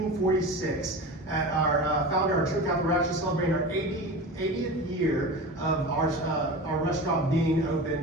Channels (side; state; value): both; normal; correlation 0.30